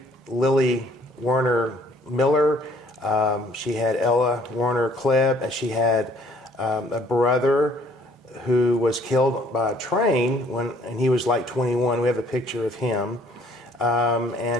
Werner Miller. She had Ella Werner Klebb, and she had a brother who was killed by a train and he was like 21. We have a picture of him.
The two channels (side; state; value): both; normal; correlation 0.59